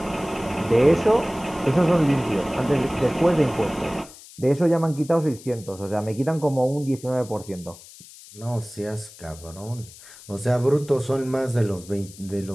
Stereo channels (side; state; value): left; noise; hiss, 19 dB below the sound